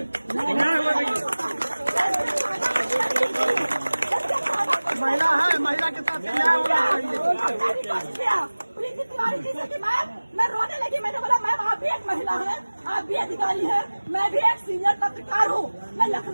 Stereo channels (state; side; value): inverted; both; correlation -1.00